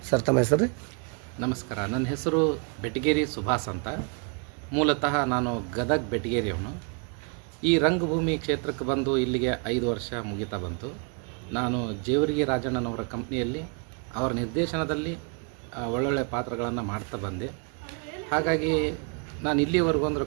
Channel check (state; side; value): quieter; left; 38.1 dB